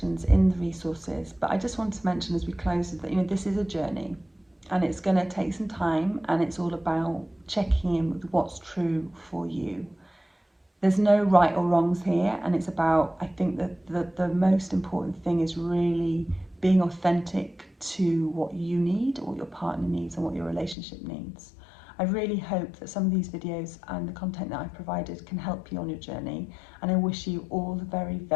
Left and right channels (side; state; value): right; drops out; at 20.8 s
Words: in the resources, but I just want to mention as we close that, you know, this is a journey and it's going to take some time, and it's all about checking in with what's true for you. There's no right or wrongs here, and it's about, I think that the most important thing is really being authentic to what you need, what your partner needs, and what your relationship needs. I really hope that some of these videos and the content that I've provided can help you on your journey, and I wish you all the very,